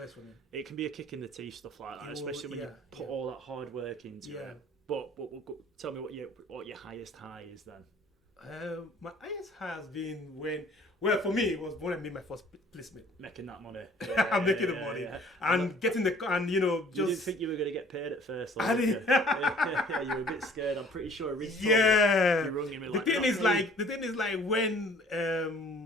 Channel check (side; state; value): both; normal; correlation 0.53